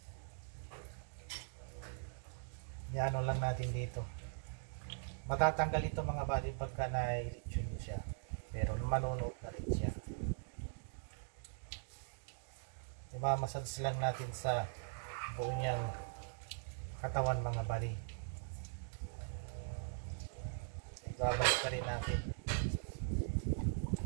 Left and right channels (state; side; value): silent; left; digital silence